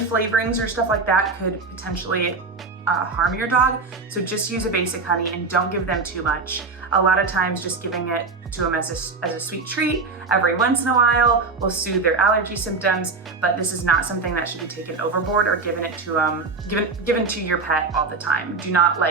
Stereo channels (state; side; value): quieter; left; 4.2 dB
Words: or stuff like that could potentially harm your dog. So just use a basic honey and don't give them too much. A lot of times just giving it to them as a sweet treat every once in a while will soothe their allergy symptoms, but this is not something that should be taken overboard or given to your pet all the time. Do not